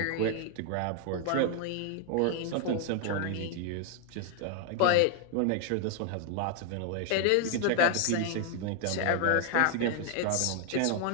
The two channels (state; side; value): different; both; correlation 0.00